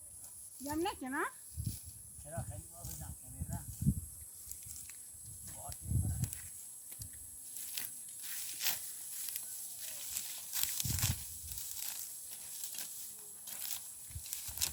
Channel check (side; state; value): both; identical; correlation 1.00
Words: جمع نکنه چرا خیلی باز جمع کنید